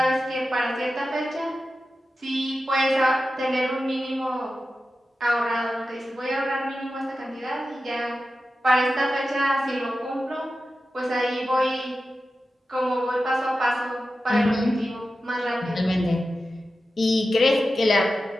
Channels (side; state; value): both; normal; correlation 0.93